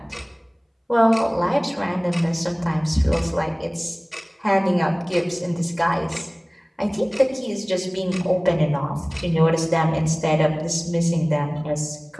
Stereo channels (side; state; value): both; identical; correlation 1.00